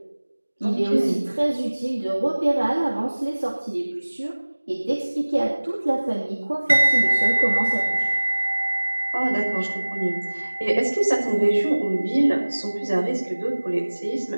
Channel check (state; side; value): inverted; both; correlation -1.00